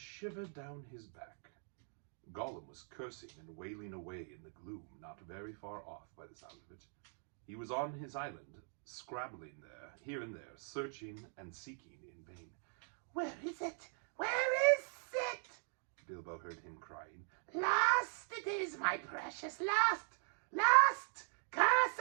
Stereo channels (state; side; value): silent; left; 50 dB below the other